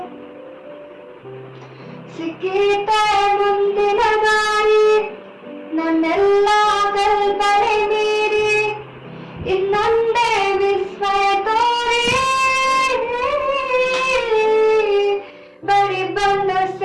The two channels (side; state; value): both; identical; correlation 1.00